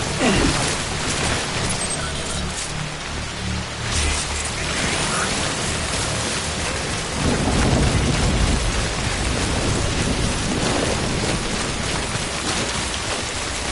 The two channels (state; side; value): identical; both; correlation 1.00